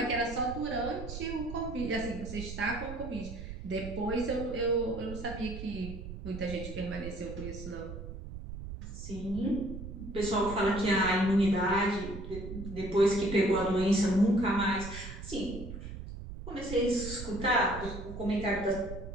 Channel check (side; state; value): right; noise; rumble, 9 dB below the sound